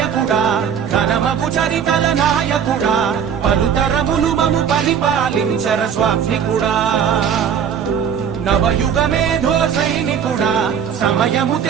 ఘనమగు చరితల నాయకుడా, పలుతరములు మము పరిపాలించర స్వామికుడా. నవయుగ మేధో సైనికుడా, సమయము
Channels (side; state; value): left; quieter; 7.9 dB